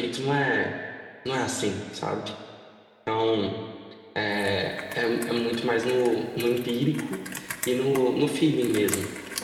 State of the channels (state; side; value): identical; both; correlation 1.00